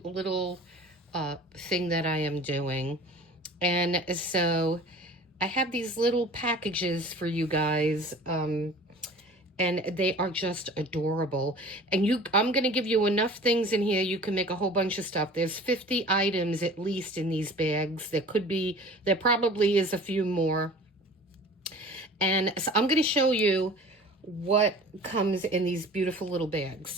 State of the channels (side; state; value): both; normal; correlation 0.43